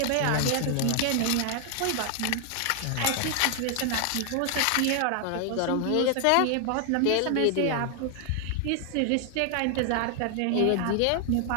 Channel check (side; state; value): both; different; correlation 0.00